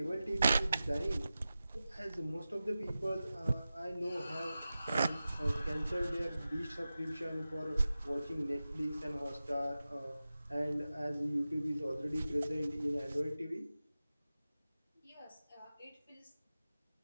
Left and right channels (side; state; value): both; inverted; correlation -0.94